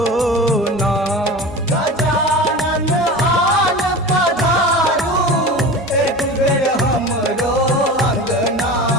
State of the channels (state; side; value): normal; both; correlation 0.32